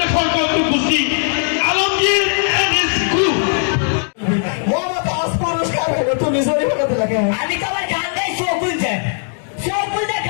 কৌতুক গোষ্ঠী Alamgir and his group Mohammad আজ পুরস্কার হলো তুমি জরি বানাতে লাগে আমি তো আমার গান গাই শো খুলছে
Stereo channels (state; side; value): silent; right; 61 dB below the other